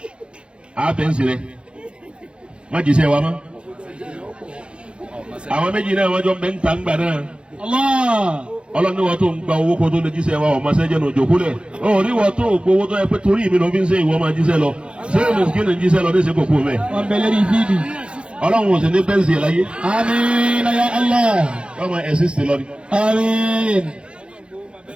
àbẹ̀nsì rẹ̀ má jíṣẹ́ wa mọ́. Àwọn méjì náà wọ́n jọ ń bẹ ń ta ń gbà náà. Ọlọ́run ní wọ́n tó ń gba owó kó tó lè jíṣẹ́ wa ọ̀ma sẹ́jẹ̀ náà jòkó lẹ̀. Ó ní wọ́n tó gbowó tó yẹ pé torí mi ló fi ń ṣe ìwọ máa jíṣẹ́ lọ. Ṣé o mùsùlùmí ní jíṣẹ́ lọ ní ìṣe kòkó mẹ́? Wọ́n bẹ lórí fídì. Ọlọ́run ò sì ní bẹ́ǹsì ẹ̀ láyé. Àmín ya Allah. Ọmọ ẹ̀sìn sì lọ ni. Àmín.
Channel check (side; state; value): left; late; 0.056 ms